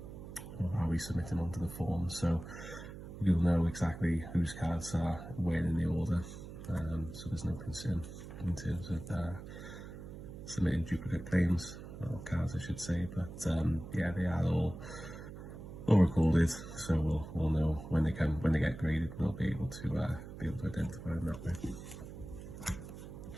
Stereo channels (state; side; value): noise; right; hum, 12 dB below the sound